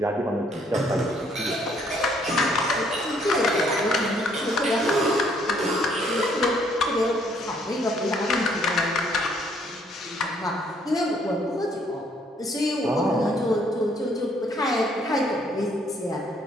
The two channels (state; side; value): normal; both; correlation 0.66